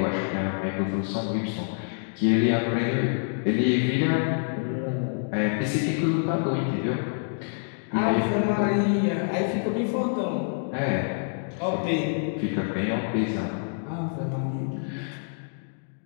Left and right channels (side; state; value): right; silent; digital silence